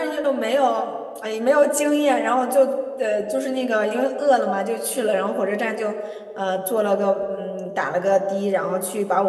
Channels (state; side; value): identical; both; correlation 1.00